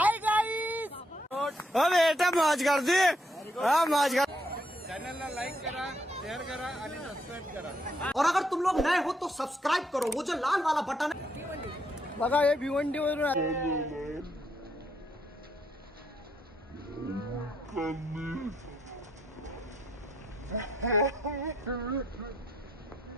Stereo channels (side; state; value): both; normal; correlation 0.75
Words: गाईस. बेटा मौज कर दी. मौज कर. चॅनलला लाईक करा, शेअर करा आणि सबस्क्राईब करा. और अगर तुम लोग नए हो तो सब्सक्राइब करो, वो जो लाल वाला बटन है. बघा हे भिवंडी वरून